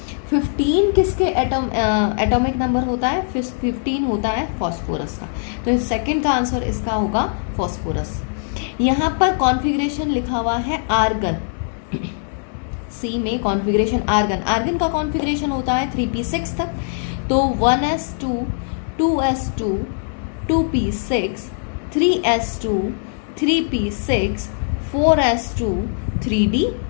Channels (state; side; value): silent; right; 60 dB below the other